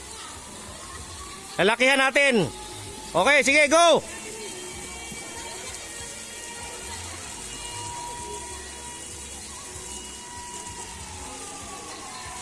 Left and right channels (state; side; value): identical; both; correlation 1.00